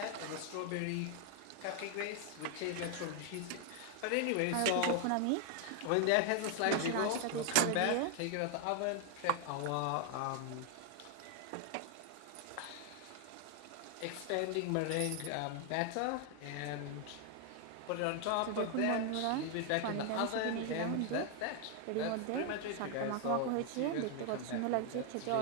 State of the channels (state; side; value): different; both; correlation 0.00